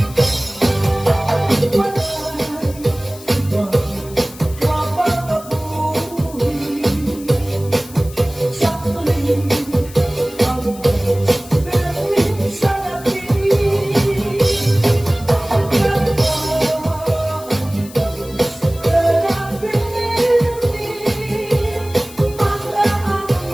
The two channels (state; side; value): noise; left; hiss, 18 dB below the sound